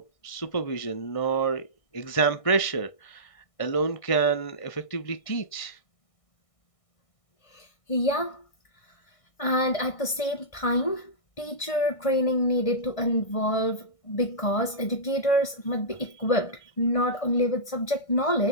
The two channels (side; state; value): right; late; 1.6 ms